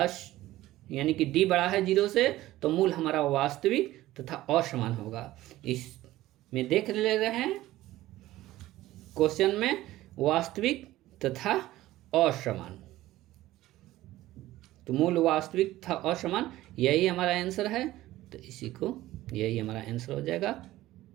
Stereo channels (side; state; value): left; quieter; 16.0 dB